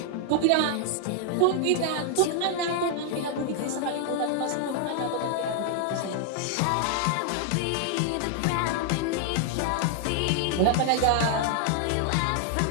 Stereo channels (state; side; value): different; both; correlation 0.00